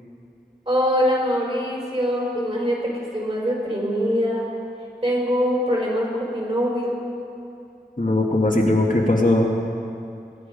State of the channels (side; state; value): both; normal; correlation 0.73